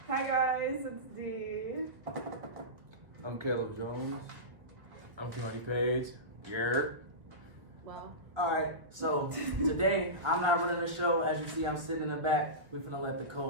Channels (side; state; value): left; late; 1.3 ms